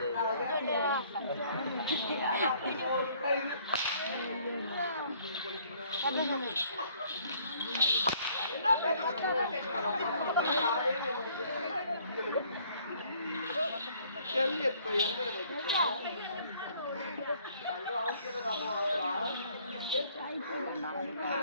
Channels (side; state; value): both; inverted; correlation -0.61